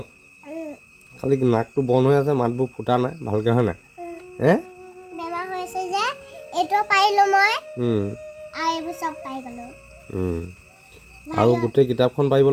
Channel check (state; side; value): identical; both; correlation 1.00